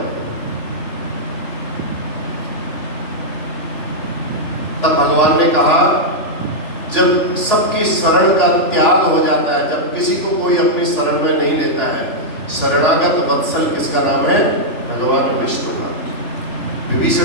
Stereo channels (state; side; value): late; right; 3.4 ms